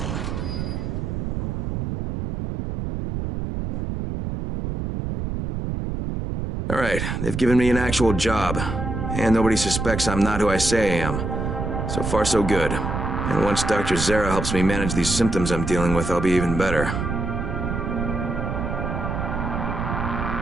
All right, they've given me an actual job. And nobody suspects I'm not who I say I am. So far, so good. And once Dr. Zere helps me manage these symptoms I'm dealing with, I'll be even better.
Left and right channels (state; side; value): noise; right; rumble, 3 dB below the sound